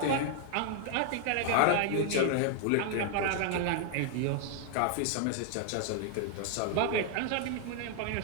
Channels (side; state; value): both; different; correlation 0.00